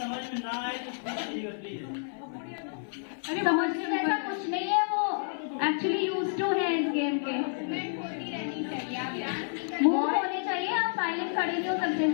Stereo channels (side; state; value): right; silent; 58 dB below the other